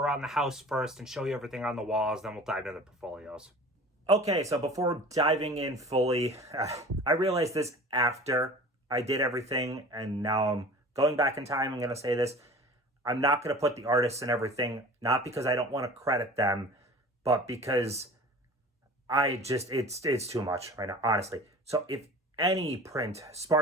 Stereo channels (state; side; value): normal; both; correlation 0.41